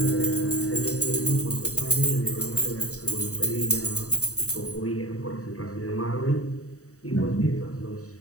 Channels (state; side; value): late; right; 0.65 ms